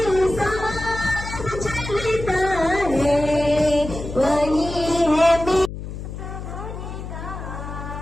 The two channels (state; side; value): noise; left; hum, 9 dB below the sound